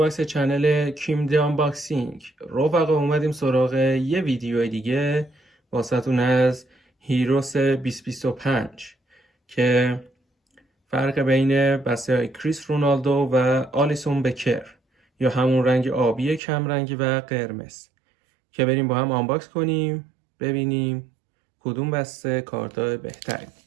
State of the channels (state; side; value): drops out; left; at 16.4 s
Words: چنل کیم دی آنباکسینگ. رفقا اومدیم سراغ یه ویدیو دیگه واسهتون از هیروس 2025 که فرق بین بسته های کریس رونالدو و آلیسون بکر یا همون رنگ آبی کم رنگی و قرمز که بریم با هم آنباکس کنیم ببینیم کدوم بسته کارت بهتری